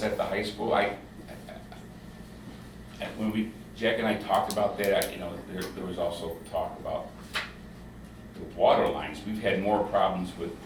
at the high school. When Jack and I talked about that, you know, there was also talk about the water lines. We've had more problems with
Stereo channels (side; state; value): both; identical; correlation 1.00